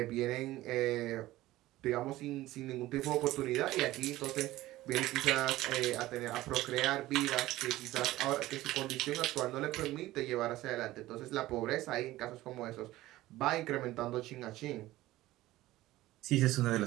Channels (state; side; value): quieter; left; 16.6 dB